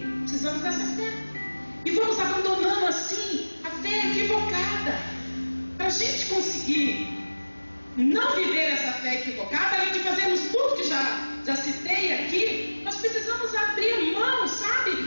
Precisamos dessa fé. E vamos abandonando assim a fé equivocada. Para a gente conseguir não viver essa fé equivocada, além de fazermos tudo que já citei aqui, nós precisamos abrir mão, sabe,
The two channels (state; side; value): inverted; both; correlation -1.00